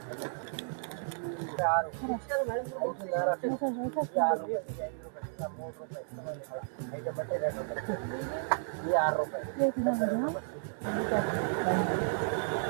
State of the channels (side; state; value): left; silent; digital silence